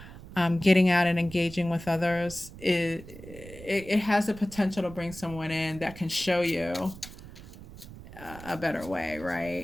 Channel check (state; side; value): noise; right; rumble, 16 dB below the sound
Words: getting out and engaging with others, it has the potential to bring someone in that can show you a better way,